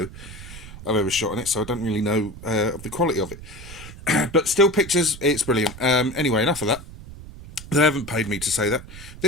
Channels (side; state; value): right; noise; rumble, 15 dB below the sound